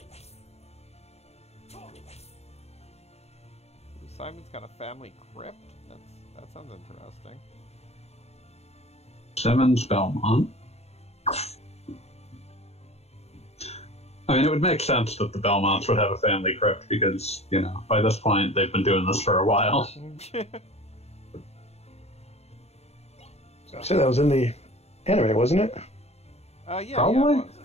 Simon's got a family crypt? That sounds interesting. Simmons Belmont. I mean, it would make sense that the Belmonts would have a family crypt because, you know, by this point they've been doing this for a while. So that was in the anime, wasn't it? Yeah, Probably. yeah, it was.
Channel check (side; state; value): right; late; 0.31 ms